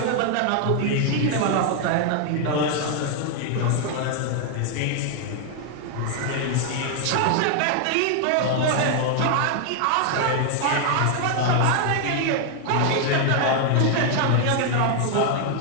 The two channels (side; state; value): both; different; correlation 0.00